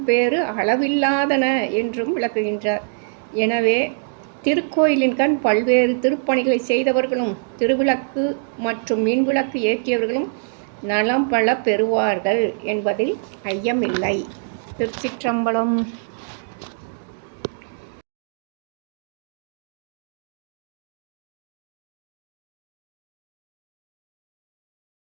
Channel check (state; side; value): silent; left; digital silence